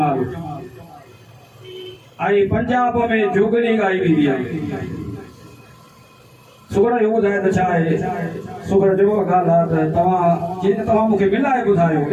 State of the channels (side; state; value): both; identical; correlation 1.00